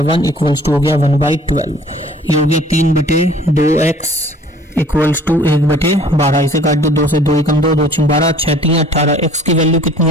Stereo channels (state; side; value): normal; both; correlation 0.53